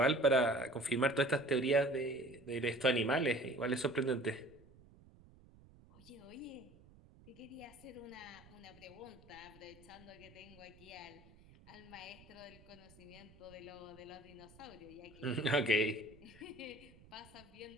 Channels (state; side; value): noise; right; rumble, 23 dB below the sound